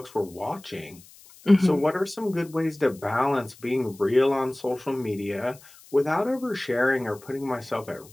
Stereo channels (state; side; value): noise; left; hiss, 23 dB below the sound